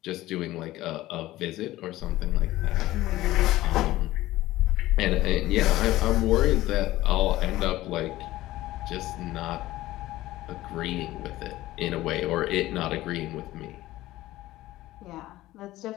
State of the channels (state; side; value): quieter; right; 16.4 dB